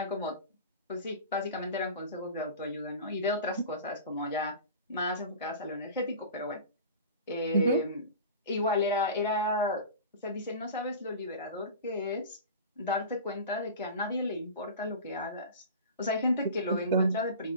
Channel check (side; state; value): both; inverted; correlation -0.34